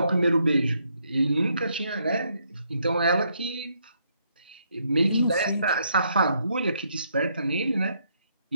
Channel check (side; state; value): both; inverted; correlation -0.74